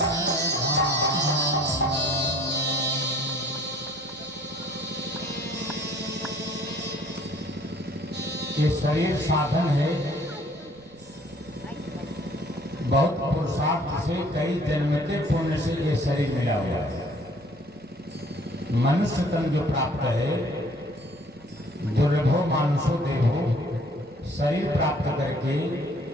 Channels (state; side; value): noise; right; rumble, 27 dB below the sound